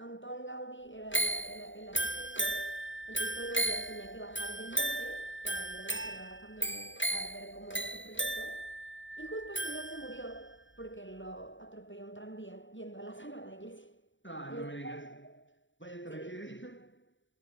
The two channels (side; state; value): right; late; 0.55 ms